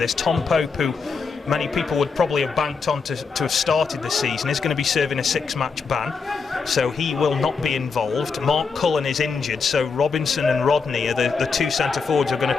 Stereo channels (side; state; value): right; quieter; 5.1 dB